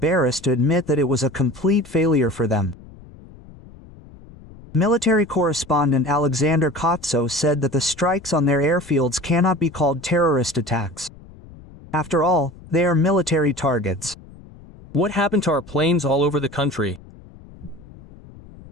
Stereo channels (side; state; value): left; noise; rumble, 20 dB below the sound